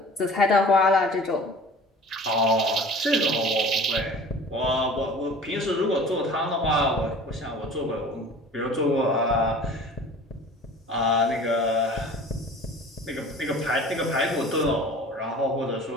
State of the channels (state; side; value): normal; both; correlation 0.43